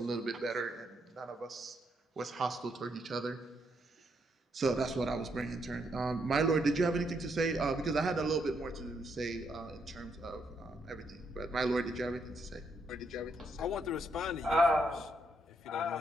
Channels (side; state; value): both; normal; correlation 0.76